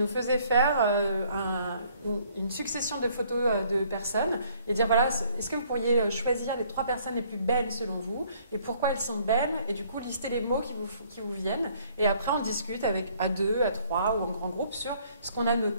faisais faire une succession de photos de personnes et dire, voilà, est-ce que vous pourriez choisir les 3 personnes les plus belles selon vous et pourquoi elles sont belles et du coup, lister les mots qui vous viennent. Et après, on discute à 2, à 3 ou en grand groupe sur ce qu'on a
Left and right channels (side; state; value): both; inverted; correlation -0.62